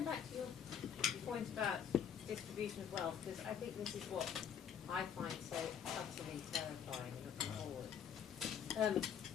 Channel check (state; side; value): quieter; right; 8.1 dB